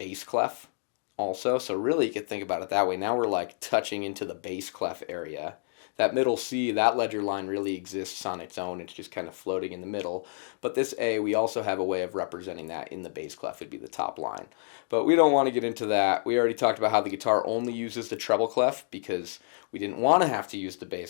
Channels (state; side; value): silent; right; digital silence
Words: clef also. So really you could think about it that way. Now we're like touching into the bass clef area. That middle C, that ledger line really exists on its own. It's just kind of floating in the middle. But this A, we also have a way of representing that in the bass clef. It'd be the top line. But we don't want to get into that. We already talked about how the guitar only uses the treble clef because we didn't want to have to use the